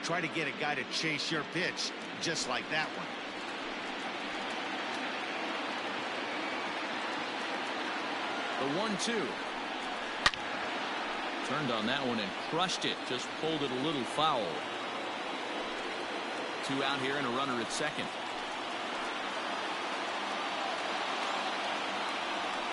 try to get a guy to chase your pitch, just like that one. The 1-2. Turned on that one and crushed it. Just pulled it a little foul. 2 out here and a runner at second.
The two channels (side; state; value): both; identical; correlation 1.00